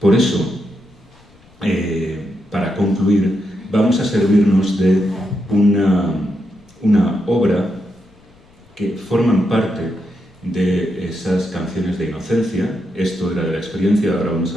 eso, para concluir, vamos a servirnos de una obra que forman parte de esas canciones de inocencia. Esto era de la experiencia, ahora vamos a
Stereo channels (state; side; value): noise; left; rumble, 30 dB below the sound